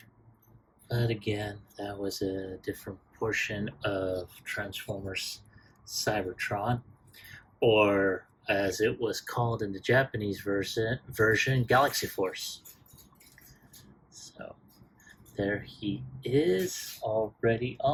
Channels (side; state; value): both; identical; correlation 1.00